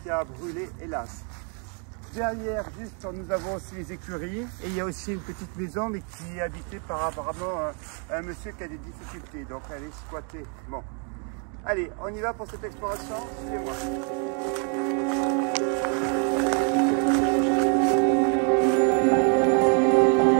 qui a brûlé hélas. Derrière, juste, nous avons aussi les écuries et il y a aussi une petite maison mais qui est habitée par apparemment un monsieur qui a des difficultés, donc elle est squattée. Bon. Allez, on y va pour cette exploration, suivez-moi.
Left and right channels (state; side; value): quieter; left; 39.9 dB